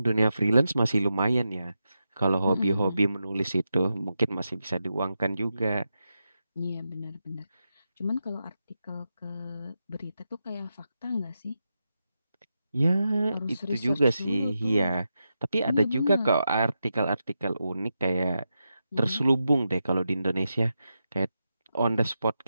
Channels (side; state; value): both; inverted; correlation -0.88